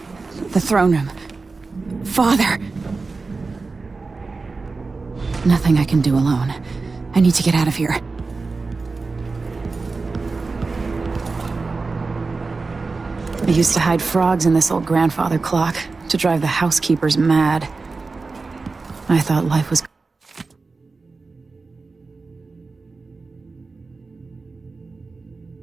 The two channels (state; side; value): quieter; left; 4.0 dB